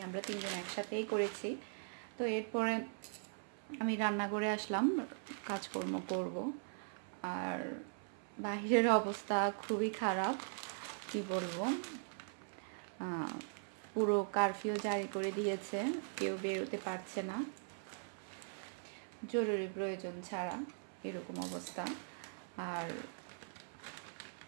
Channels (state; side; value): silent; left; 51 dB below the other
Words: আমরা তিনজন একসাথেই করেছি। তো এরপরে আমি রান্না করে আসলাম, কাজকর্ম করব। আর বাহিরের অবস্থা খুবই খারাপ, কি বলবো। পুরো কারফিউ জারি করে দিয়েছে, কেউ বেরোতে পারছে না জরুরি প্রয়োজন ছাড়া, এরকম অবস্থা। আর